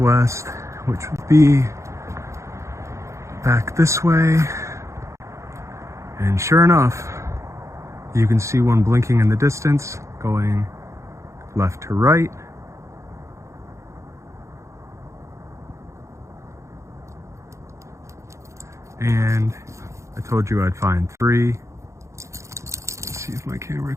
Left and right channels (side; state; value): left; late; 0.14 ms